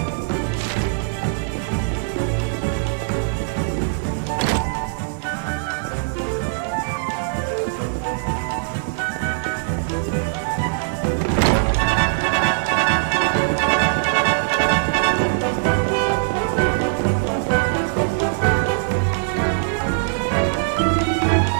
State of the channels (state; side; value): silent; left; digital silence